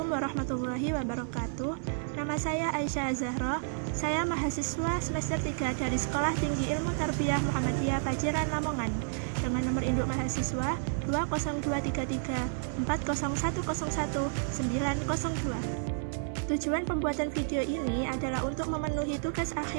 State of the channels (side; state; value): left; silent; digital silence